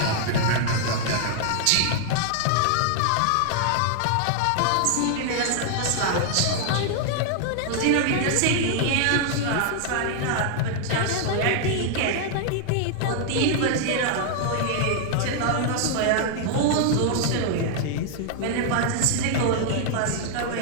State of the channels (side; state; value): both; different; correlation 0.00